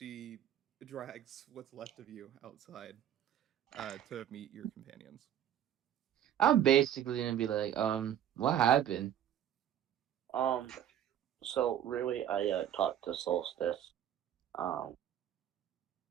drags what's left of you outside to meet your companions. I'm basically gonna be like, what happened? So really, I talked to Solstice, um,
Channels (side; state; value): left; quieter; 10.4 dB